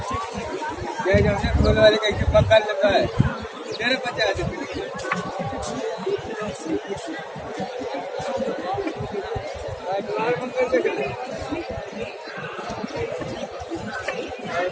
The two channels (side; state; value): both; identical; correlation 1.00